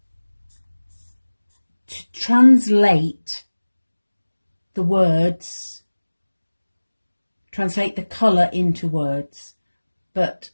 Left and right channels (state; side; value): inverted; both; correlation -1.00